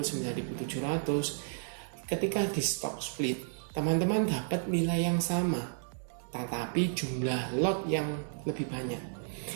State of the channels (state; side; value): silent; left; digital silence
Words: 9.700, ketika di stock split, teman-teman dapat nilai yang sama, tetapi jumlah lot yang lebih banyak.